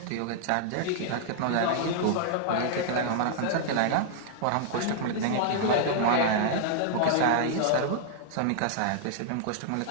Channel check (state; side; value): different; both; correlation -0.01